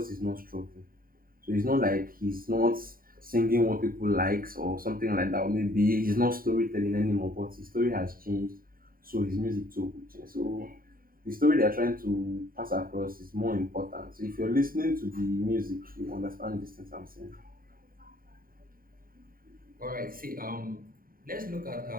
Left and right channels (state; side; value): late; left; 0.42 ms